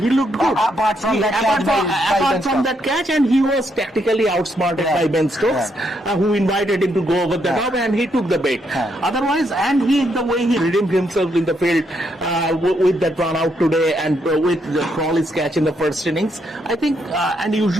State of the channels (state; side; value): normal; both; correlation 0.77